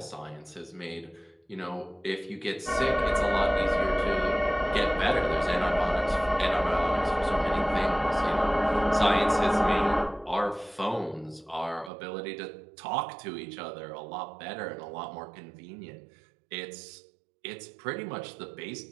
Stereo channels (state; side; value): drops out; left; at 11.9 s